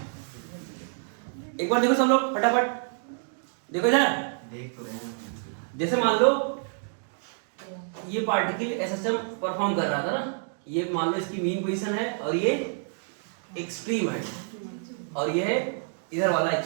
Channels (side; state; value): left; silent; 59 dB below the other